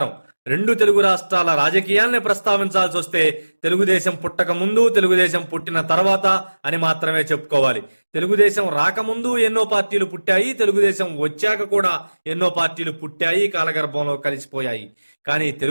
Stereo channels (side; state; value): both; inverted; correlation -1.00